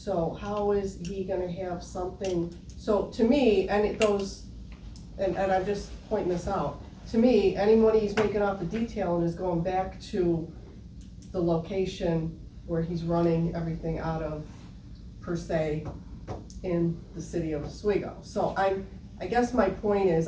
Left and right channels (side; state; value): both; identical; correlation 1.00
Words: how is he gonna have something, so to me, and it goes, and I'm just pointing this out, to me, any money he's making off the detailing is going back to the location where he's running everything out of, per se, in the city of Oswego. So I guess my point is,